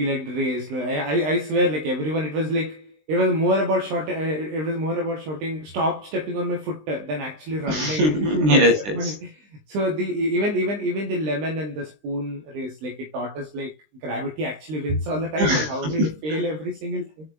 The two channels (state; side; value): late; left; 20 ms